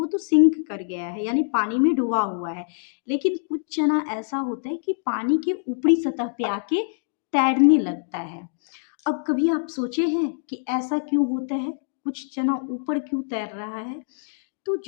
तो सिंक कर गया है, यानी पानी में डूबा हुआ है। लेकिन कुछ चना ऐसा होता है कि पानी के ऊपरी सतह पे आके तैरने लगता है। अब कभी आप सोचे हैं कि ऐसा क्यों होता है, कुछ चना ऊपर क्यों तैर रहा है? तो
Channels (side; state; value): right; silent; digital silence